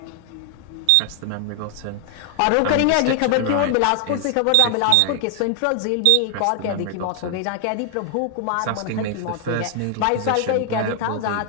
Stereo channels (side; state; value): both; different; correlation 0.00